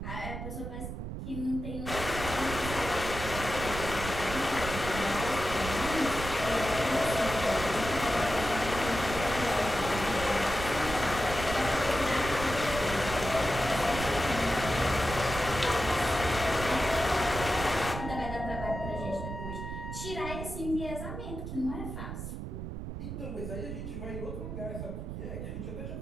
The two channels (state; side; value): noise; right; rumble, 7 dB below the sound